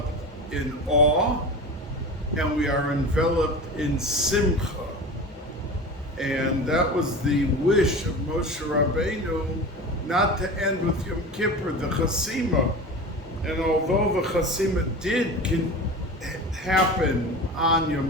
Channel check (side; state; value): both; normal; correlation 0.31